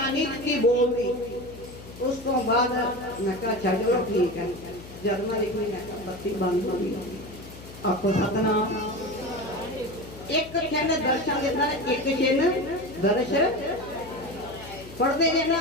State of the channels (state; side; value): noise; left; hum, 16 dB below the sound